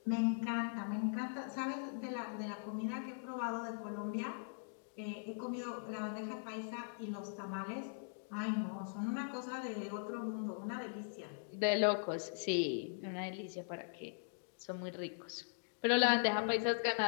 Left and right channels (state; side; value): silent; right; digital silence